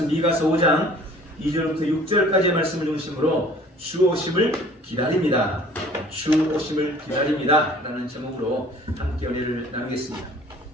미가서 5장 2절부터 6절까지의 말씀을 중심으로 주 오심을 기다립니다. 주 오심을 기다립니다. 라는 제목으로 함께 은혜를 나누겠습니다.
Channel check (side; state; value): both; normal; correlation 0.51